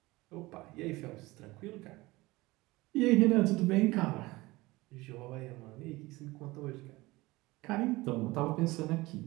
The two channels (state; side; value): quieter; left; 20.7 dB